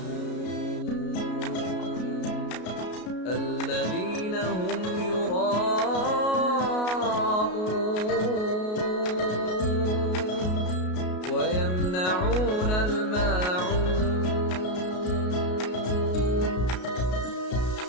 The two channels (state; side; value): late; right; 33 ms